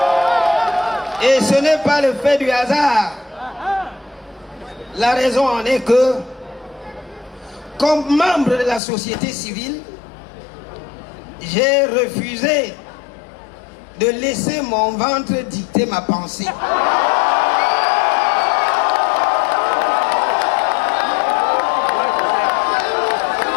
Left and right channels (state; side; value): drops out; right; at 8.8 s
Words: Et ce n'est pas le fait du hasard. La raison en est que, comme membre de la société civile, j'ai refusé de laisser mon ventre dicter ma pensée.